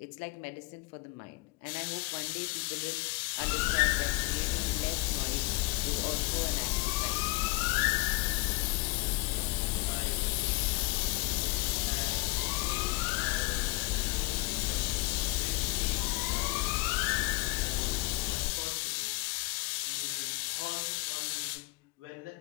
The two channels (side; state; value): right; quieter; 23.8 dB